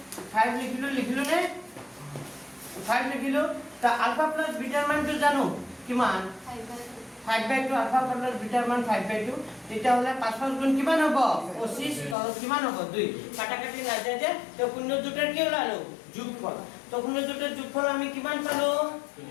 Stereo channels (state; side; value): drops out; right; at 12.2 s